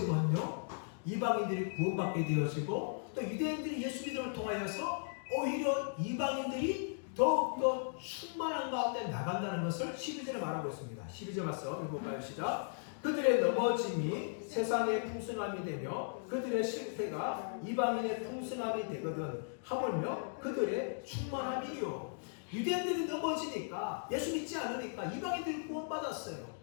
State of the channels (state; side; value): silent; right; digital silence